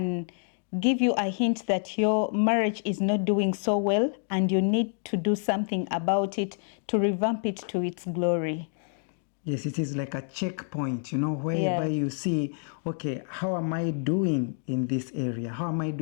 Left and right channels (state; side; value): silent; right; 59 dB below the other